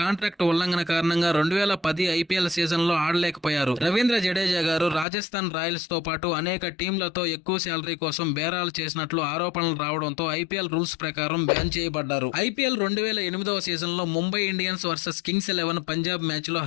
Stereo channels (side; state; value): right; drops out; at 5.1 s